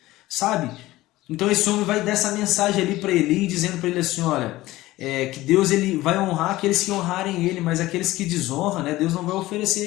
sabe? Então esse homem vai dar essa mensagem ali para Eli, dizendo para ele assim: olha, que Deus ele vai honrar aqueles que honrarem ele, mas aqueles que desonram, né, Deus não vai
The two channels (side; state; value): right; quieter; 17.4 dB